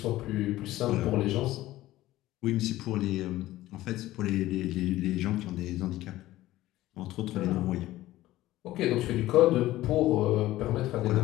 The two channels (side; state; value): right; quieter; 15.9 dB